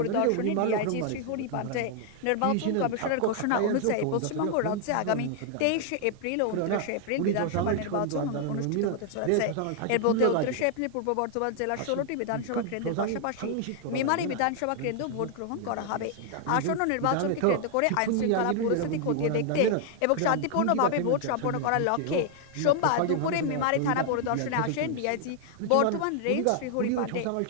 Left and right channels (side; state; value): both; different; correlation 0.00